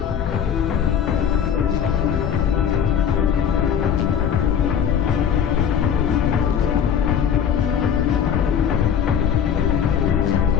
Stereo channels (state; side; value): quieter; right; 8.3 dB